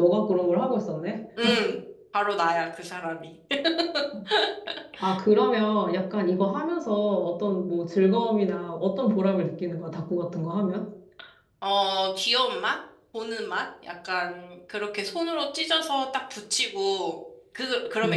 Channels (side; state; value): both; identical; correlation 1.00